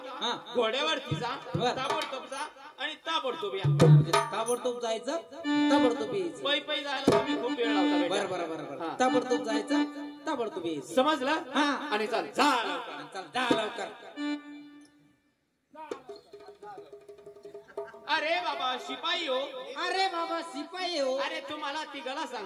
हा. घोड्यावरती जा, बर. ताबडतोब जा आणि ताबडतोब या. म्हणजे ताबडतोब जायचं, ताबडतोब यायचं. पै पै जायला तुम्ही खूप वेळ लावता बेटा. बरं बरं बरं हा. बरं. ताबडतोब जायचं, ताबडतोब यायचं. समजलं? हा. आणि चाल जा लवकर. चल जा लवकर. अरे बाबा शिपाई हो, अरे बाबा शिपाई हो. अरे तुम्हाला तिघाला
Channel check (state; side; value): identical; both; correlation 1.00